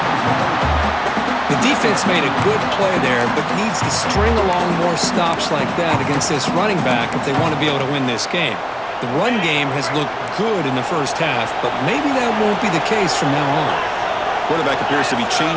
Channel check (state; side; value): identical; both; correlation 1.00